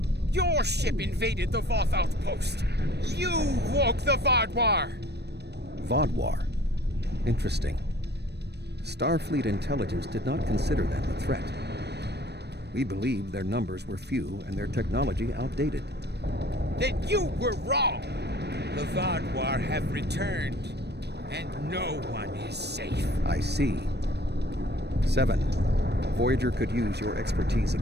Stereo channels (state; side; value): late; left; 0.48 ms